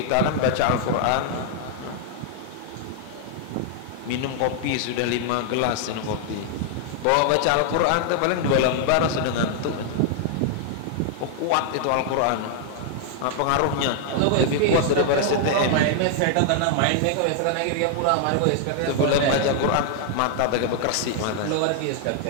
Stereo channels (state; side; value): different; both; correlation 0.00